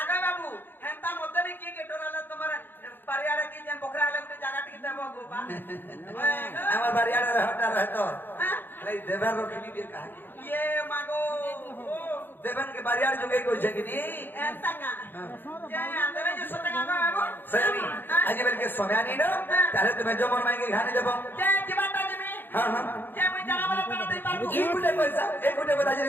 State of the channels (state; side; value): late; right; 0.096 ms